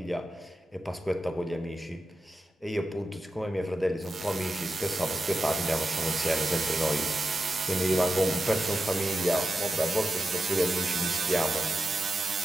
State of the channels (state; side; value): normal; both; correlation 0.91